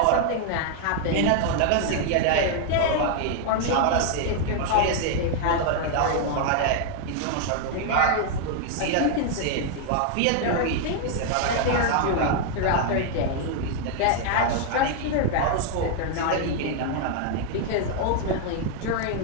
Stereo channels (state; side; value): different; both; correlation 0.00